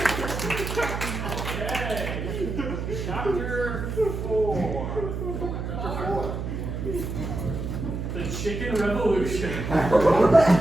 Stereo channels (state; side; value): noise; right; hum, 4 dB below the sound